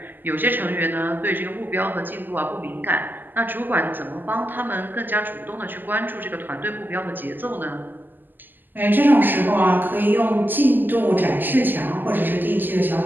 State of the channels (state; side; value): late; left; 0.090 ms